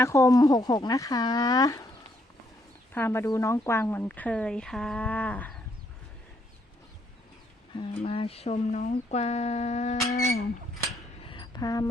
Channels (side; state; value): both; normal; correlation 0.72